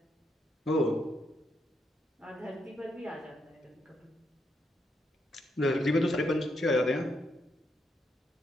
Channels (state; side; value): normal; both; correlation 0.79